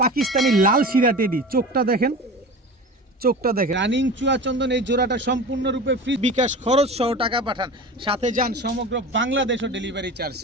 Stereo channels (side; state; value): both; normal; correlation 0.33